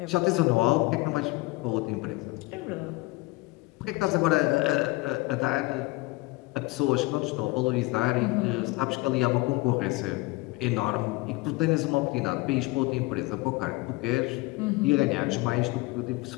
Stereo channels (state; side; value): quieter; right; 22.2 dB